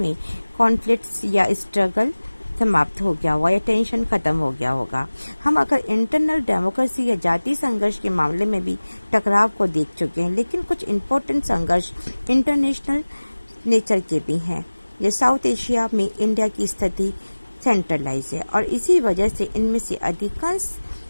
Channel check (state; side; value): inverted; both; correlation -1.00